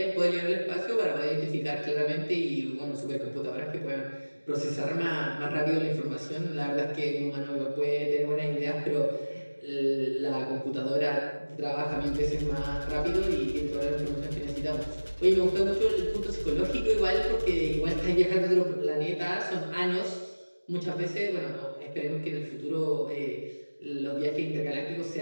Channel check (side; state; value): both; inverted; correlation -1.00